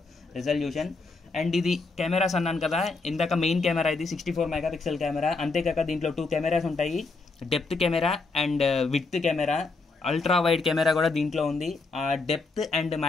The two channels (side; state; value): right; quieter; 3.8 dB